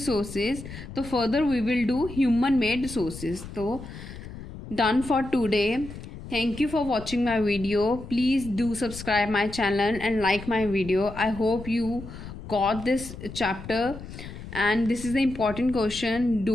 So further we will do human made resources. So done for today. Thank you for watching my video. Please do subscribe my channel and like my video. I hope you got this chapter, and this is the important question.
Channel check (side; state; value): left; noise; rumble, 12 dB below the sound